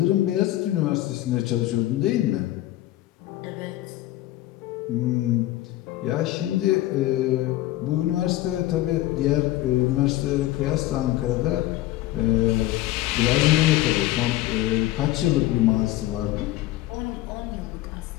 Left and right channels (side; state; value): right; quieter; 15.6 dB